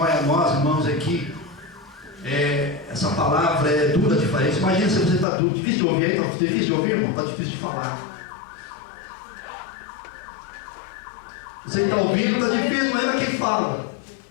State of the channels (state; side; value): drops out; right; at 5.2 s